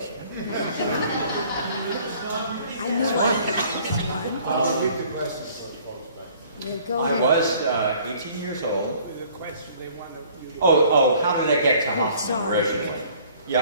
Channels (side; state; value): both; inverted; correlation -0.56